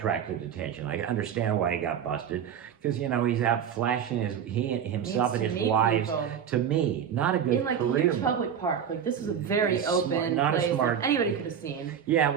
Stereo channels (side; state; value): left; quieter; 8.4 dB